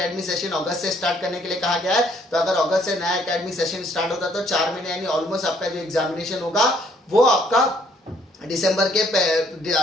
सेशन अगस्त से स्टार्ट करने के लिए कहा गया है। तो अगर अगस्त से नया एकेडमिक सेशन स्टार्ट होता है तो 4 महीने यानी ऑलमोस्ट आपका जो एग्जामिनेशन होगा वो आपका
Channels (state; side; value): normal; both; correlation 0.65